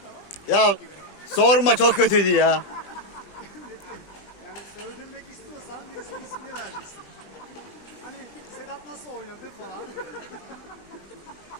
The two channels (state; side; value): late; right; 20 ms